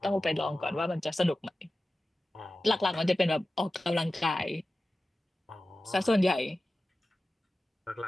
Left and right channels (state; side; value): normal; both; correlation 0.95